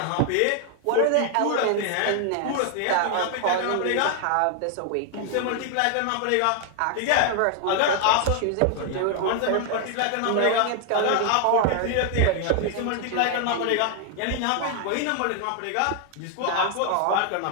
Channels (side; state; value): both; different; correlation 0.00